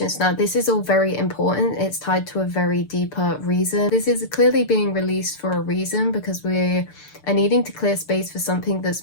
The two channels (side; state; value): right; late; 6.8 ms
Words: Now, this is all very important. It's tied to a very deeper reason. This is clearly being released for a reason, because we are needing to clear space for something that's